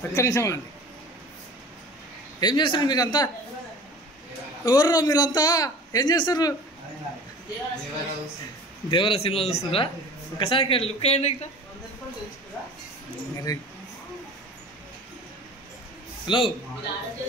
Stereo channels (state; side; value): normal; both; correlation 0.41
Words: ఒక్క నిమిషం ఆగండి. ఏం చేస్తారు మీరంతా? ఎవరు మీరంతా ఏం చేస్తారు? దేవర సినిమా చూస్తున్నారా? ఒకసారి లుక్ అయ్యండి ఇక్కడ. హలో